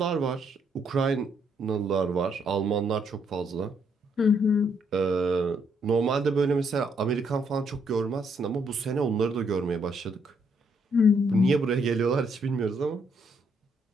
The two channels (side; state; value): both; normal; correlation 0.72